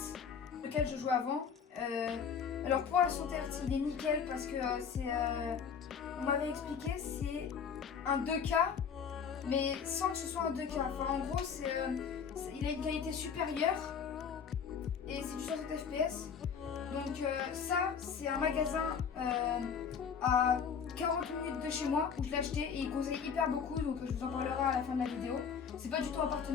lequel je jouais avant. Alors pour la 60 Hz, il est nickel parce que on m'avait expliqué, c'est un 2K, mais sans que ce soit un 2K. Enfin en gros, il a une qualité supérieure et c'est du 60 FPS. Donc ça, c'est un magasin à 40 minutes de chez moi où je l'ai acheté et il conseille hyper beaucoup, donc je vous en parlerai à la fin de la vidéo. C'est pas du tout un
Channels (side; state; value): right; quieter; 6.8 dB